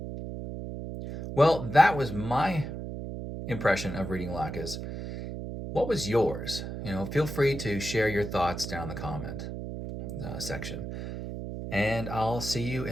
Well, that was my impression of reading Laches. What was yours? Feel free to share your thoughts down in the comment. section. And I'll see you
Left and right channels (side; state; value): right; noise; hum, 7 dB below the sound